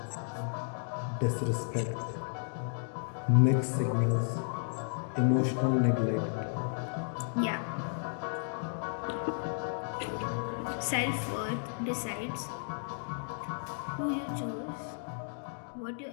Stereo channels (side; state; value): right; silent; digital silence